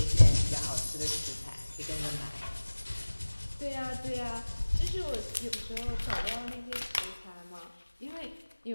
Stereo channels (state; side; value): inverted; both; correlation -1.00